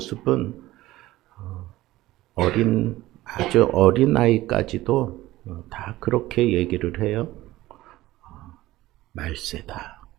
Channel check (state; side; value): quieter; left; 16.9 dB